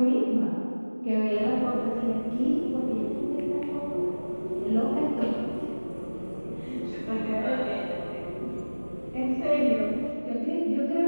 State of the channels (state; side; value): inverted; both; correlation -1.00